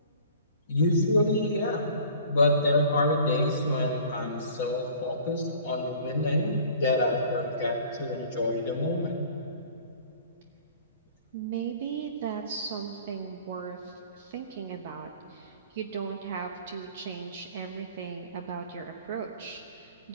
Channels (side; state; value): both; inverted; correlation -0.48